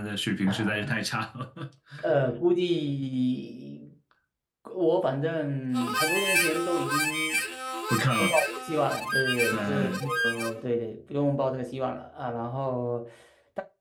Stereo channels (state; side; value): identical; both; correlation 1.00